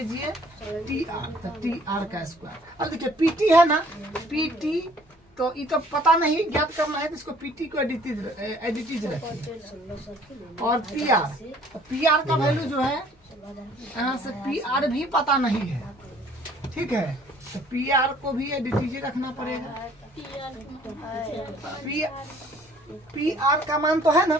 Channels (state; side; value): normal; both; correlation 0.57